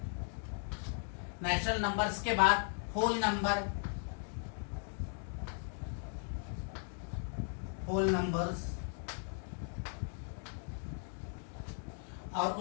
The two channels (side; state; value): right; silent; 53 dB below the other